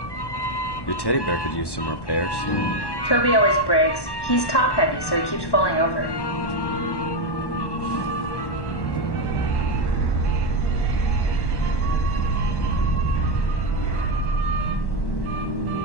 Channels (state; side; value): late; right; 1.1 ms